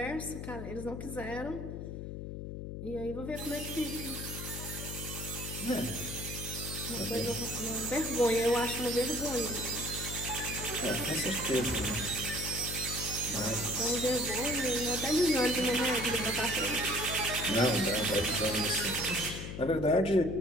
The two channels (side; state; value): left; noise; hum, 7 dB below the sound